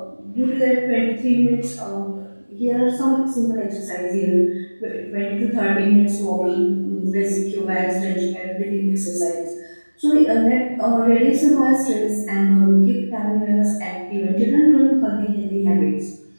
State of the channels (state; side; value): inverted; both; correlation -1.00